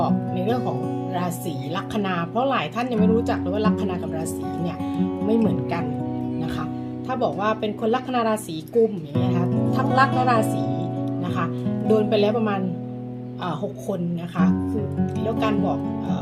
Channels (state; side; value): identical; both; correlation 1.00